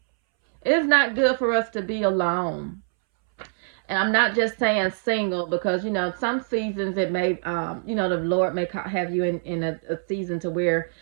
It is not good for us to be alone. And I'm not just saying single because some seasons it may the Lord may have you in a season to where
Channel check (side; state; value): left; silent; 62 dB below the other